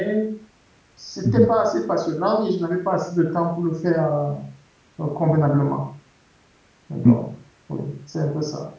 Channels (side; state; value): both; identical; correlation 1.00